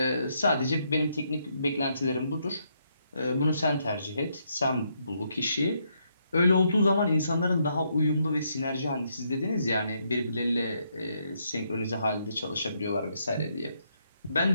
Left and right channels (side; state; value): both; inverted; correlation -0.76